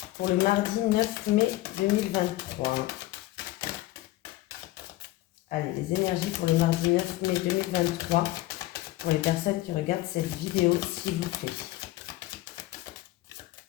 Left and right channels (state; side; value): quieter; right; 17.1 dB